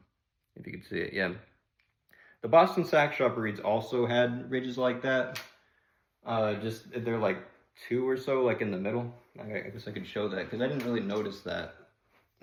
If you can see it, yeah. The Boston Sax Shop reeds also had ridges like that. Just they're like two or so, like in the middle. I guess I could show that because I didn't really notice that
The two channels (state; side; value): identical; both; correlation 1.00